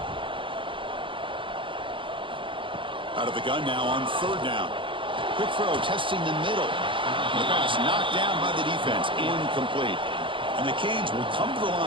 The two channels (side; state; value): left; late; 0.25 ms